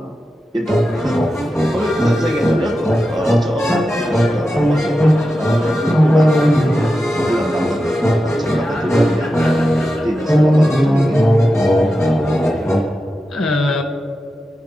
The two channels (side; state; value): both; normal; correlation 0.91